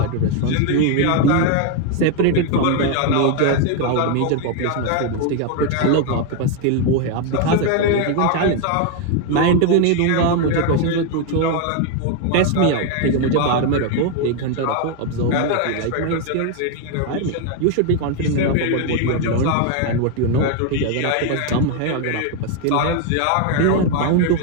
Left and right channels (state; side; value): different; both; correlation 0.01